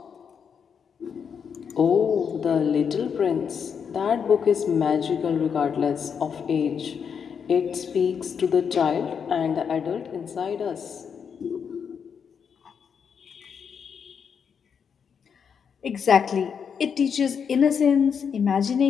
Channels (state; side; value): quieter; right; 6.9 dB